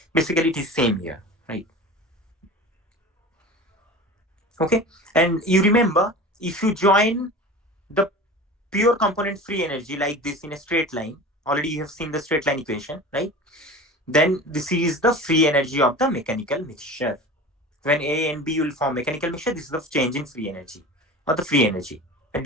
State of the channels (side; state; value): both; normal; correlation 0.35